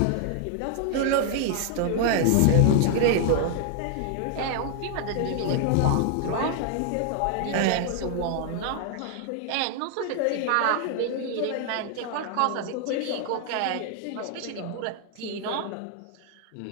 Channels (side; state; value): both; different; correlation 0.00